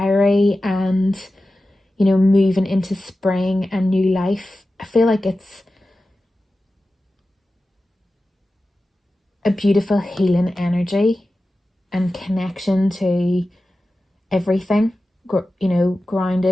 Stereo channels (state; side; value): normal; both; correlation 0.94